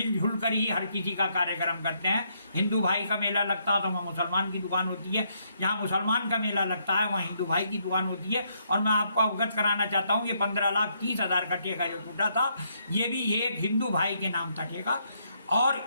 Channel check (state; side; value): inverted; both; correlation -0.74